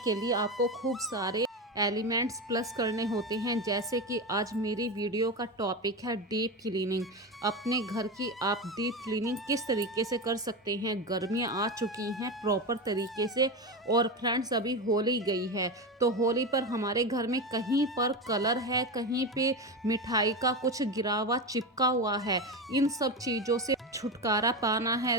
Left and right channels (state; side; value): normal; both; correlation 0.19